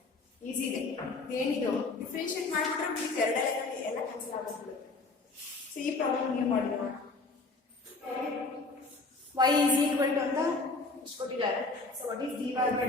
ಈಸಿ ಇದೆ. ಏನಿದು ಡಿಫ್ರೆನ್ಶಿಯೇಟ್ ಮಾಡಿಬಿಟ್ರೆ మీకు ಎರಡರಲ್ಲಿ ಎಲ್ಲ ಕ್ಯಾನ್ಸಲ್ ಆಗುತ್ತೆ. ಸೊ ಈ ಪ್ರಾಬ್ಲಮ್ ನೀವು ಮಾಡಿದ್ರೆ y is equal to ಅಂತ ಇಷ್ಟು ಕೊಟ್ಟಿದ್ದಾರೆ. So what is dy by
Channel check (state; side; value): quieter; right; 3.6 dB